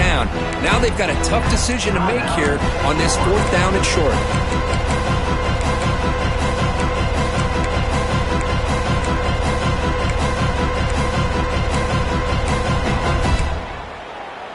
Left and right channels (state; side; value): identical; both; correlation 1.00